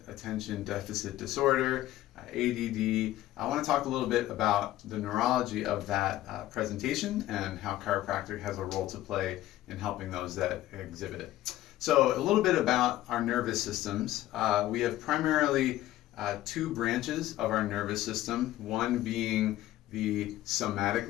deficit disorder, ADD. I want to talk a little bit about the neurology of that presentation and how chiropractic has a role to play in helping those that exhibit it. So a little bit about our nervous systems. We have primarily two branches of our nervous system, one being the somatic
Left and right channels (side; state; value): right; quieter; 14.8 dB